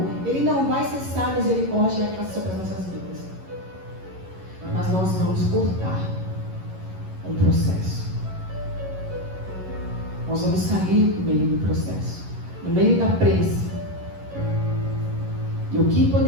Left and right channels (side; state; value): left; late; 11 ms